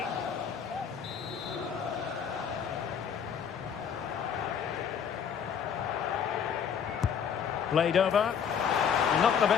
Played over. Not the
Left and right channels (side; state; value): right; quieter; 7.5 dB